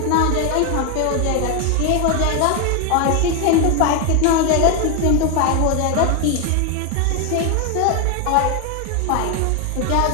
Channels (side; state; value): both; different; correlation 0.01